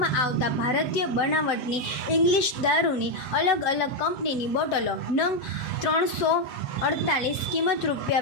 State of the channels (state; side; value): late; right; 7.5 ms